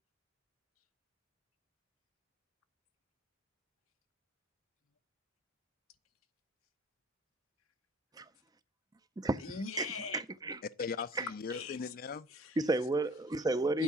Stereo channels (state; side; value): normal; both; correlation 0.50